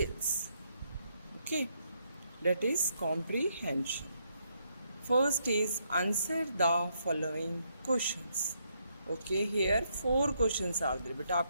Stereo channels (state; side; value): inverted; both; correlation -0.76